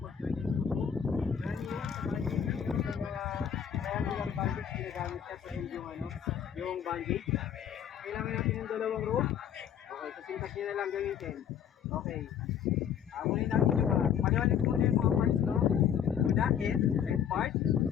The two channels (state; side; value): quieter; right; 8.7 dB